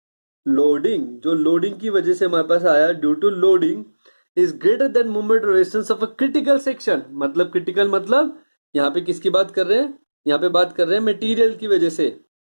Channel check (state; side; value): inverted; both; correlation -1.00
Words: जो लोडिंग की वजह से हमारे पास आया due to loading is greater than moment of resistance of a critical section. मतलब क्रिटिकल मतलब यहाँ पे किसकी बात कर रहे हैं, यहाँ पे बात कर रहे हैं मटेरियल की वजह से